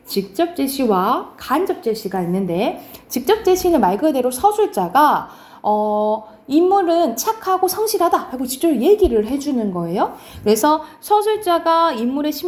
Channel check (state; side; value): identical; both; correlation 1.00